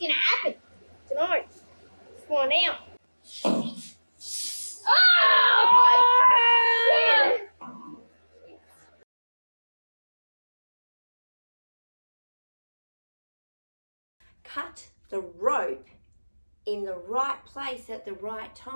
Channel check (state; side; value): inverted; both; correlation -1.00